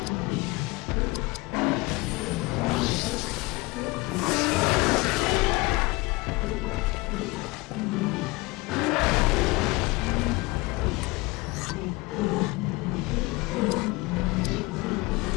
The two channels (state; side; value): quieter; right; 23.3 dB